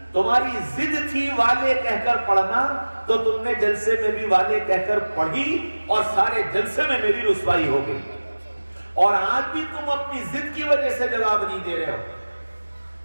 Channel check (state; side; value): inverted; both; correlation -1.00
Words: تمہاری ضد تھی والے کہہ کر پڑھنا، تو تم نے جلسے میں بھی والے کہہ کر پڑھی اور سارے جلسے میں میری رسوائی ہو گئی، اور آج بھی تم اپنی ضد کی وجہ سے جواب نہیں دے رہے ہو۔